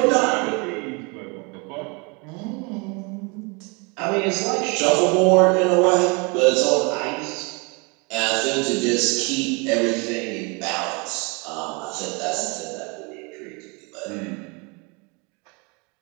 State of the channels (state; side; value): quieter; left; 30.7 dB